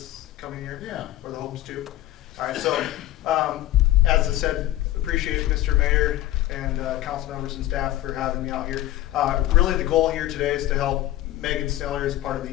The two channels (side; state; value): right; quieter; 14.9 dB